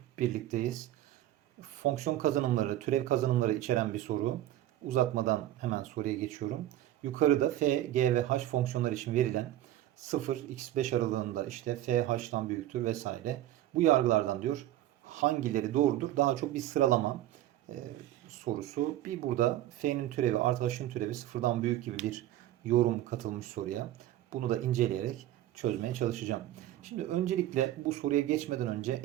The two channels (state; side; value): quieter; left; 13.5 dB